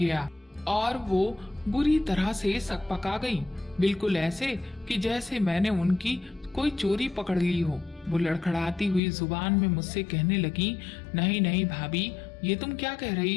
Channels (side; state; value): right; drops out; at 9.0 s